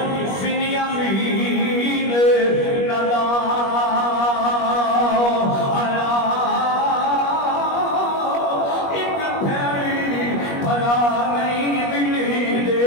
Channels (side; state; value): right; late; 21 ms